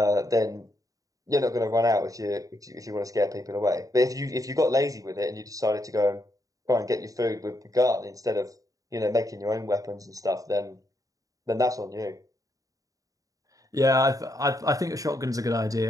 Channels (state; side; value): late; left; 0.17 ms